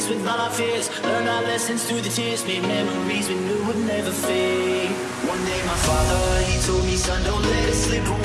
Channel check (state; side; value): identical; both; correlation 1.00